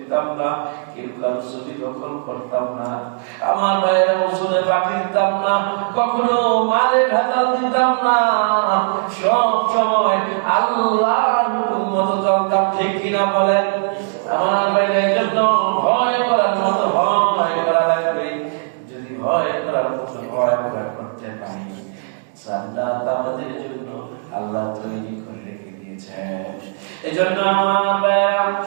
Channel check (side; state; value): left; silent; 66 dB below the other